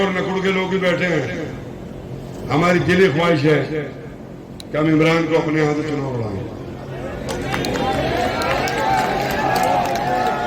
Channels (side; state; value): both; identical; correlation 1.00